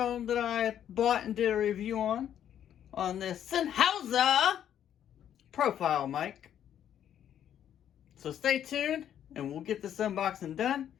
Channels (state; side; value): quieter; right; 10.1 dB